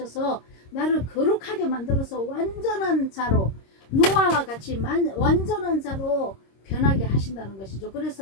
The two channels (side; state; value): right; late; 26 ms